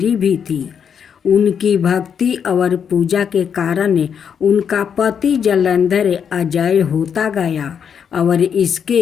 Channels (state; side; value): quieter; right; 7.5 dB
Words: भी थी। उनकी भक्ति और पूजा के कारण उनका पति जलंधर अजय होता गया और